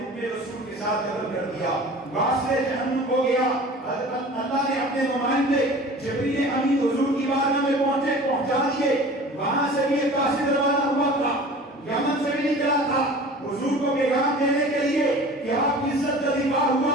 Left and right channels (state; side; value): normal; both; correlation 0.42